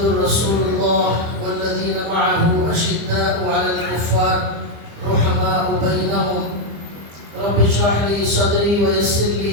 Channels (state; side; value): late; left; 25 ms